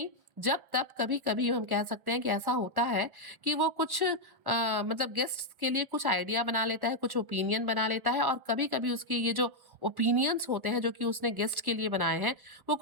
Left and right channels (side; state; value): left; late; 1.2 ms